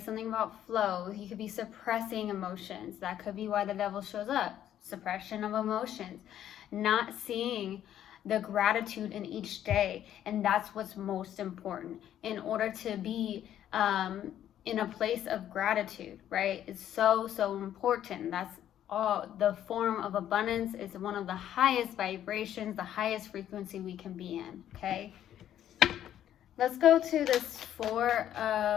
Something about flow. You could be suppressing emotions. That could be why the devil shows up. Suppression of emotions. Not seeing the gratitude in each day. And that's what's most important. In order to be in a place of gratitude, right? It's so important. That's all. The form of abundance is one of the highest vibrations, the highest frequency we can be in, okay? Let's go to this 4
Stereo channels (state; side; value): quieter; right; 11.1 dB